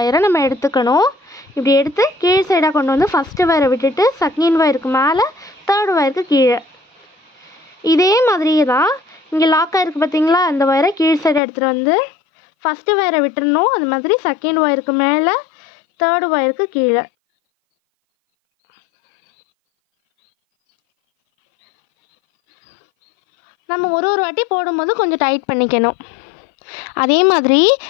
நம்ம எடுத்துக்கணும். இப்படி எடுத்து கீழ் சைடாக கொண்டு வந்து ஃபஸ்ட்டு ஒயரை விட்டுட்டு செகண்ட் ஒயருக்கு மேலே, தேர்டு ஒயருக்கு கீழே. இதே மாதிரியே தான் இங்கே லாக் ஆகிருக்கு பார்த்தீங்களா, இந்த ஒயரை கீழ் சைடை எடுத்துகிட்டு வந்து ஃபஸ்ட்டு ஒயரை விட்டுறணும். அது மாதிரி செகண்ட் ஒயருக்கு மேலே, தேர்டு ஒயருக்கு கீழே. நம்ம ஒரு வாட்டி போடும்போது கொஞ்சம் டைட் பண்ணிக்கணும். அதே மாதிரி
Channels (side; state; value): right; drops out; at 11.4 s